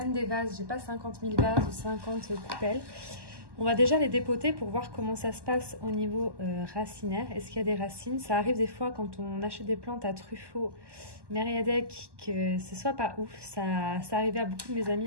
des vases, j'ai pas 50 000 vases ou 50 coupelles. On va déjà les dépoter pour voir comment ça se passe au niveau racinaire. Est-ce qu'il y a des racines? Ça arrive des fois quand on achète des plantes à Truffaut, Mériadec, que ce soit pas ouf. Ça arrivait à beaucoup de mes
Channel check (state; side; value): late; left; 1.1 ms